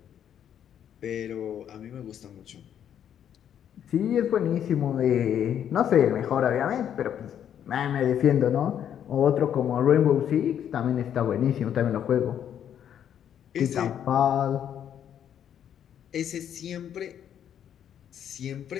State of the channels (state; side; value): quieter; right; 9.5 dB